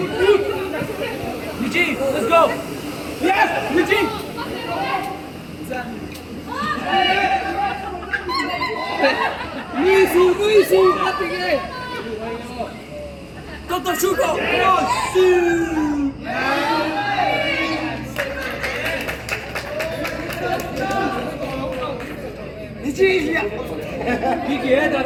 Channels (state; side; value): identical; both; correlation 1.00